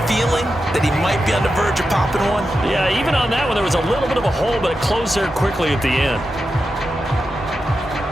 feeling that he might be on the verge of popping one. Yeah, even on that one, there was a little bit of a hole, but it closed there quickly at the end.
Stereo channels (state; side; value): normal; both; correlation 0.89